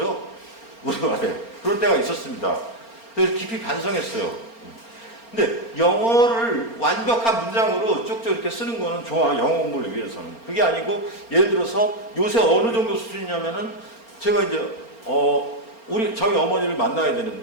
우리말에. 그런 때가 있었습니다. 그래서 깊이 반성했어요. 근데 영어를 완벽한 문장으로 쭉쭉 이렇게 쓰는 거는 좋아. 영어 공부를 위해서는. 그게 아니고 예를 들어서 요새 어느 정도 수준이냐면은 제가 이제 저희 어머니를 만나야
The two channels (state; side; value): late; right; 4.3 ms